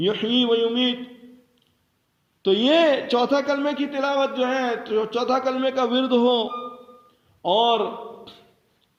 و یمیت. تو یہ چوتھا کلمے کی تلاوت جو ہے، چوتھا کلمے کا ورد ہو، اور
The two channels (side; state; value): both; identical; correlation 1.00